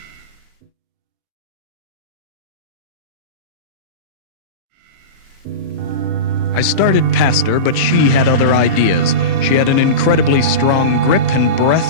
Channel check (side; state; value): left; late; 37 ms